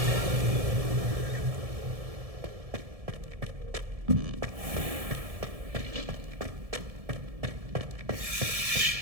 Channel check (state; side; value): late; left; 1.7 ms